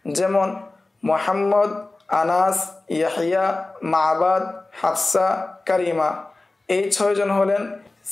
যেমন মুহাম্মদ, আনাস, ইয়াহিয়া, মাবাদ, হাফসা, কারিমা, এই 6 জন হলেন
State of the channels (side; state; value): right; quieter; 3.1 dB